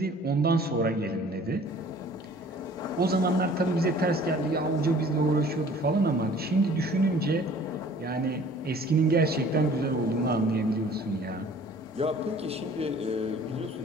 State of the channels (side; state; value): both; normal; correlation 0.51